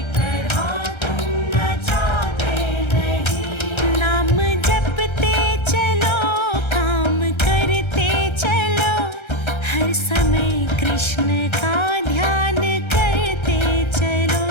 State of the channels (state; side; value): late; right; 1.3 ms